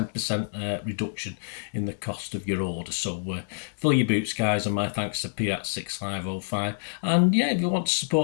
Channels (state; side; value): silent; right; digital silence